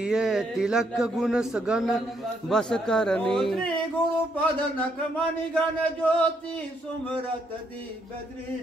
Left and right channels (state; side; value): normal; both; correlation 0.74